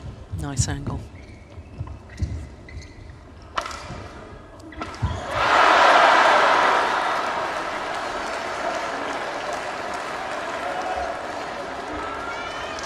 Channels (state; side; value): identical; both; correlation 1.00